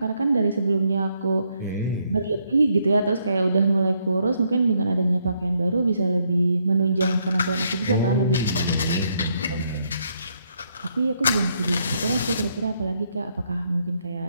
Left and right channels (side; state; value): both; inverted; correlation -0.74